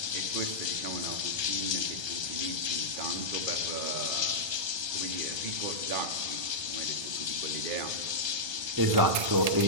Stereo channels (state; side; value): late; left; 1.3 ms